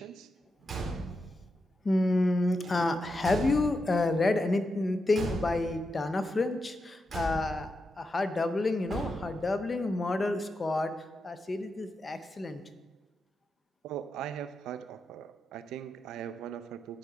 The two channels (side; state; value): both; normal; correlation 0.87